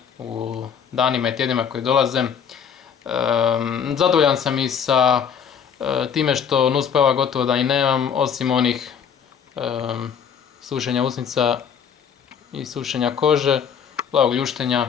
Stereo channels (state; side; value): quieter; right; 7.5 dB